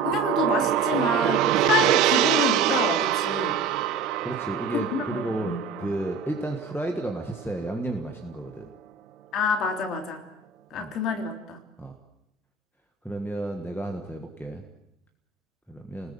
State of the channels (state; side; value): quieter; left; 4.1 dB